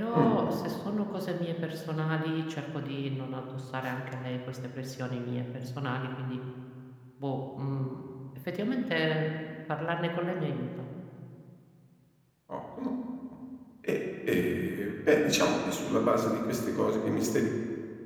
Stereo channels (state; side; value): identical; both; correlation 1.00